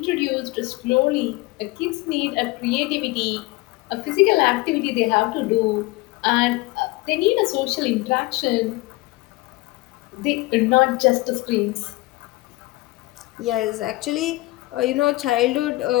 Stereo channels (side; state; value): right; quieter; 21.1 dB